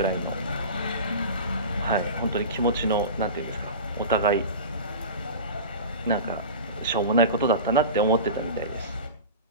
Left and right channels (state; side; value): inverted; both; correlation -0.31